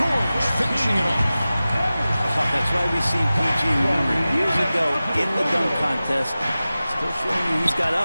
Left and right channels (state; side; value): inverted; both; correlation -0.96